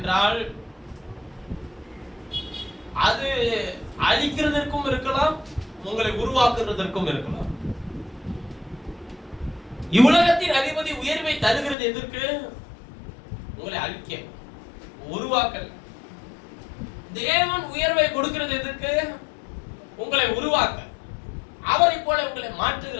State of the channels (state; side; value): drops out; right; at 11.8 s